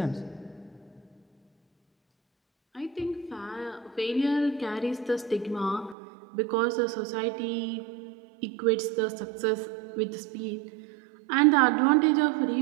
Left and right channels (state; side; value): drops out; left; at 6.0 s